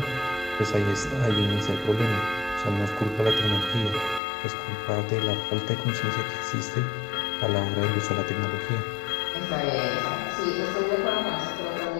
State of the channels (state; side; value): drops out; right; at 4.2 s